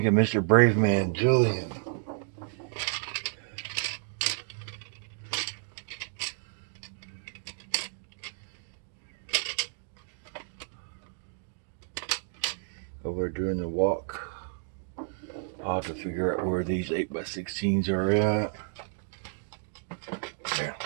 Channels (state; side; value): silent; left; digital silence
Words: of Mr. Brave Man, Julian? Over doing the walk. I'll have to figure out where these 8x16s are at. There,